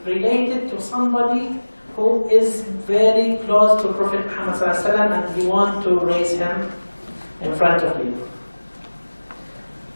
related to somebody who is very close to Prophet Muhammad ﷺ, and he wants to raise him in front of you.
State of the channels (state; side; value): inverted; both; correlation -1.00